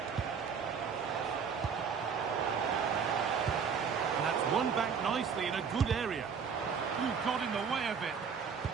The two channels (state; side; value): quieter; left; 6.4 dB